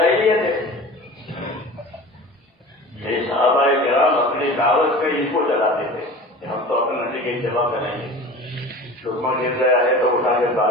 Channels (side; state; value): both; normal; correlation 0.38